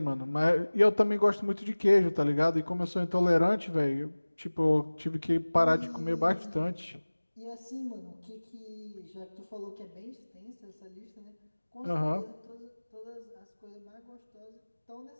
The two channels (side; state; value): both; inverted; correlation -1.00